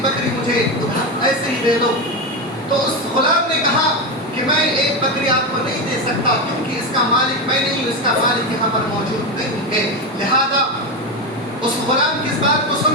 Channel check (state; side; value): normal; both; correlation 0.14